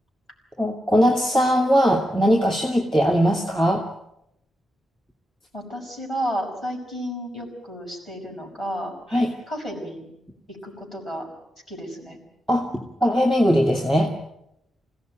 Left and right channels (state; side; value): normal; both; correlation 0.88